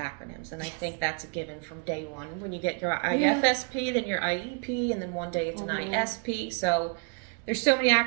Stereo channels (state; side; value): quieter; left; 36.2 dB